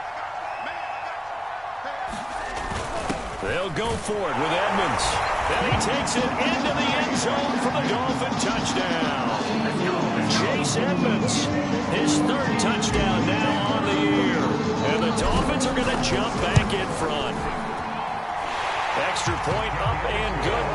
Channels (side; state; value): both; identical; correlation 1.00